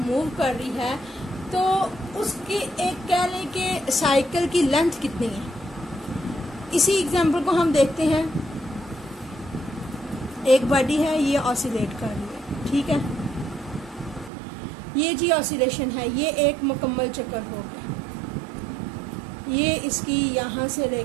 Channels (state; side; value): drops out; left; at 14.3 s